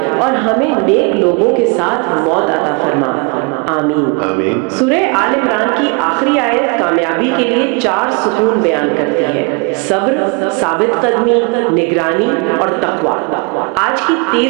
اور ہمیں نیک لوگوں کے ساتھ موت عطا فرما، آمین۔ آمین۔ سورہ آل عمران کی آخری آیت کامیابی کے لیے 4 ستون بیان کرتی ہے: صبر، ثابت قدمی، نگرانی اور تقوی۔ آج کی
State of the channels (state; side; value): quieter; left; 32.1 dB